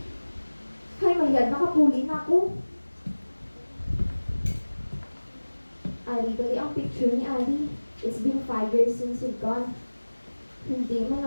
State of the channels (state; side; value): inverted; both; correlation -1.00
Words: Hay, mayad. Nakapuli na ako. Ali, dali ang picture ni Ali. It's been 5 years since you've gone. Hindi